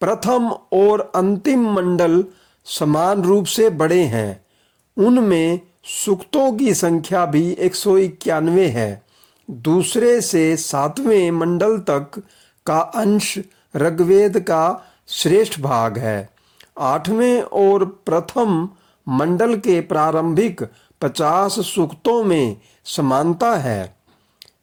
प्रथम और अंतिम मंडल समान रूप से बड़े हैं। उनमें सूक्तों की संख्या भी 191 है। दूसरे से 7वें मंडल तक का अंश ऋग्वेद का श्रेष्ठ भाग है। 8वें और प्रथम मंडल के प्रारंभिक 50 सूक्तों में समानता है।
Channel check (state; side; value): identical; both; correlation 1.00